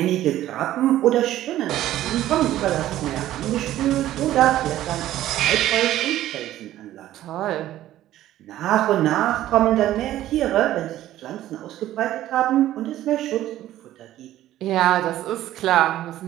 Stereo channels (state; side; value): quieter; left; 13.6 dB